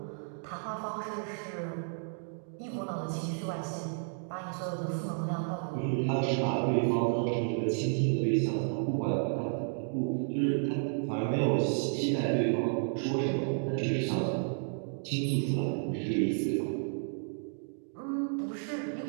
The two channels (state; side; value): silent; left; digital silence